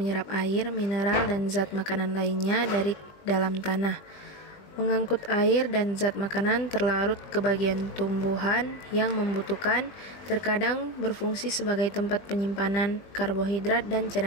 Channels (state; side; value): late; right; 20 ms